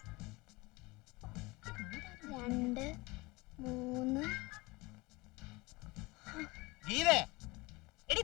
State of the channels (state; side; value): quieter; right; 23.2 dB